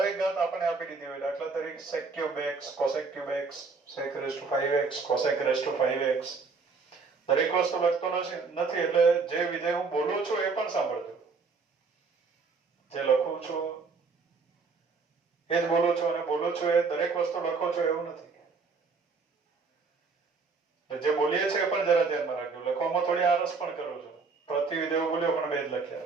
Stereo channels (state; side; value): quieter; left; 4.6 dB